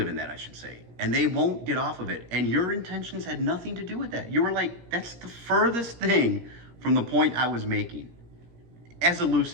in that, I should say, and they won't get off of it. And your intentions had nothing to do with that. You were like, that's the furthest thing from the point I was making, as a loose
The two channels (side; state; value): left; late; 17 ms